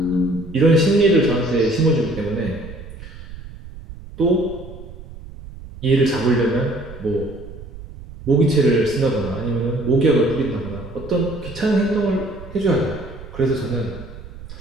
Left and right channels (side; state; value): right; noise; rumble, 15 dB below the sound